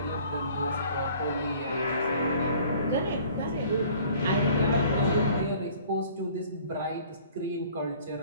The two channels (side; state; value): both; inverted; correlation -0.52